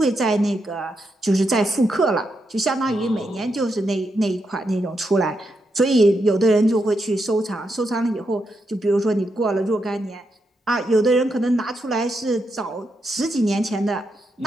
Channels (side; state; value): both; normal; correlation 0.83